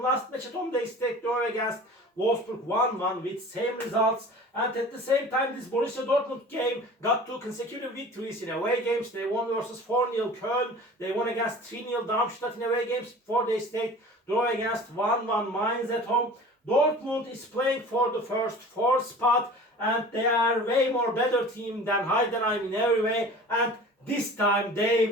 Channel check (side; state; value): both; normal; correlation 0.41